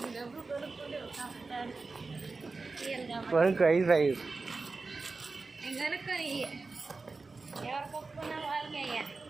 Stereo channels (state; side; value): quieter; left; 3.9 dB